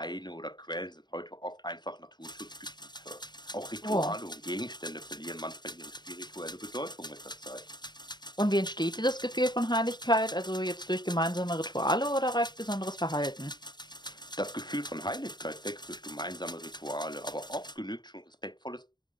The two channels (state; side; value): late; right; 0.21 ms